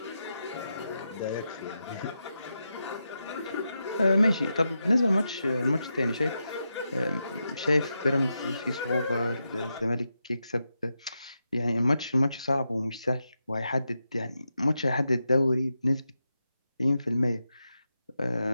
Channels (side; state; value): both; inverted; correlation -0.87